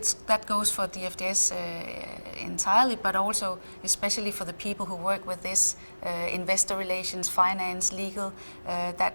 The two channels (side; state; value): both; inverted; correlation -1.00